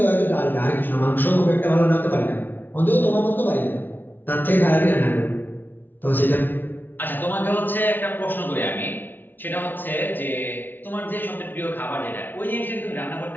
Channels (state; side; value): late; right; 0.091 ms